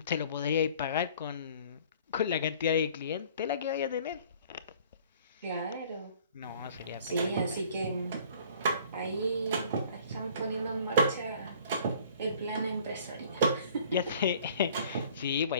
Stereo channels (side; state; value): both; inverted; correlation -0.53